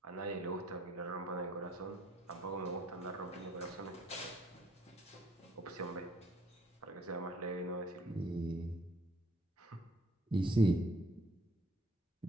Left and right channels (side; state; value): both; normal; correlation 0.63